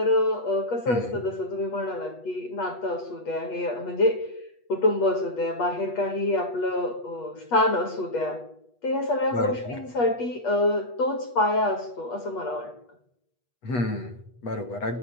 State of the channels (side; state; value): right; late; 8.3 ms